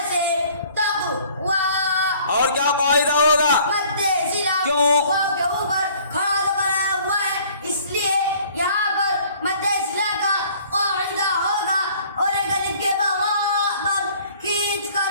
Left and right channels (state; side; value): inverted; both; correlation -0.55